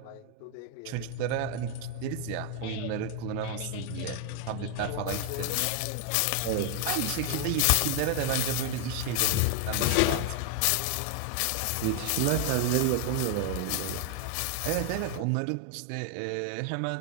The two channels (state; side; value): different; both; correlation 0.00